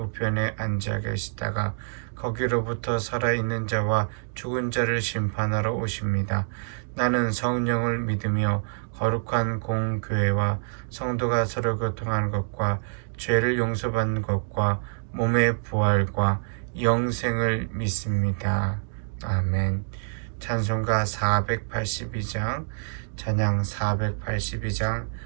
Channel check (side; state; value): left; silent; digital silence